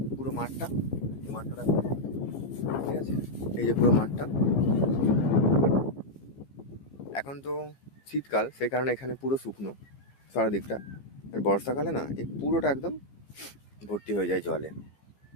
পুরো মাঠটা, এই মাঠটা ঠিক আছে, এই যে পুরো মাঠটা। এখন তো শীতকাল, সেই কারণে এখানে পুরো শুকনো চারদিকটা। আর বর্ষাকালে না এই পুরোটা একদম ভর্তি হয়ে যায় জলে।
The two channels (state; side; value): late; right; 15 ms